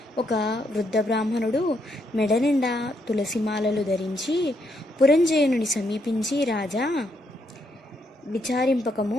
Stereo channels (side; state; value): both; normal; correlation 0.76